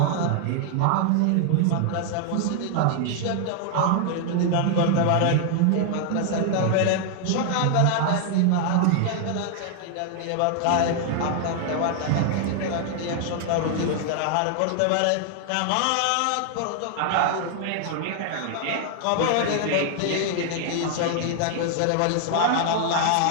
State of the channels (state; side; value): different; both; correlation 0.00